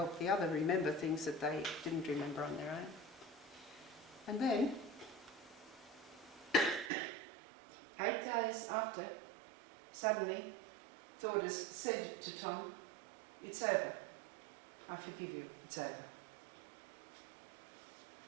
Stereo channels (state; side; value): drops out; left; at 6.9 s